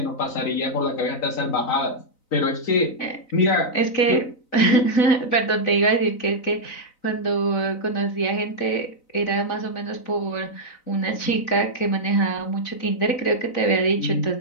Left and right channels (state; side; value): late; right; 3.9 ms